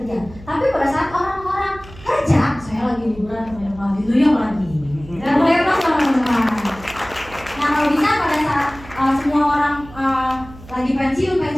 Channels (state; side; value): noise; right; hum, 19 dB below the sound